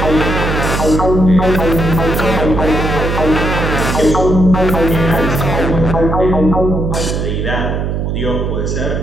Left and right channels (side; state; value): right; noise; hum, 1 dB below the sound